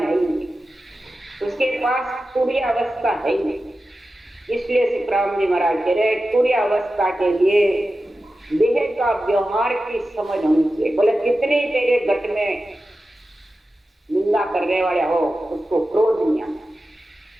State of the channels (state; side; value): normal; both; correlation 0.93